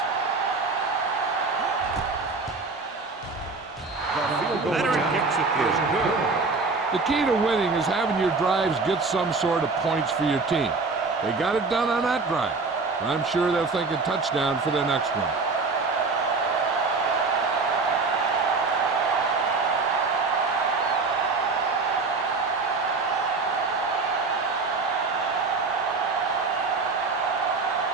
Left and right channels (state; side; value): quieter; left; 4.1 dB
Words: Veteran kicks it good. The key to winning is having your drives get some sort of points for your team. They got it done on that drive. I'm sure they're thinking touchdown for their next one.